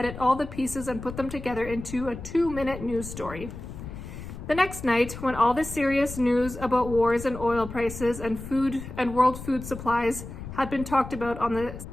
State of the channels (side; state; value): left; noise; rumble, 11 dB below the sound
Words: all the pieces and put them together into a 2-minute news story. The next night, when all the serious news about wars and oil prices and food and world food supplies had been talked about on the